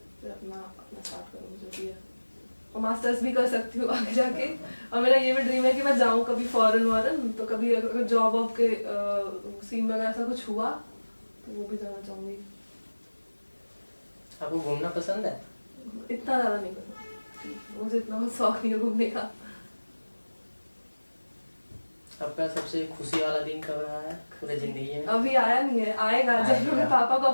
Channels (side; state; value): both; inverted; correlation -1.00